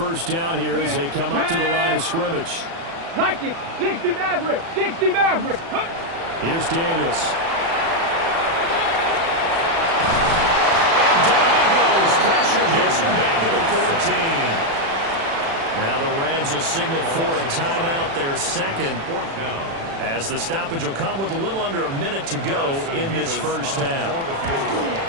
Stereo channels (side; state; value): left; late; 36 ms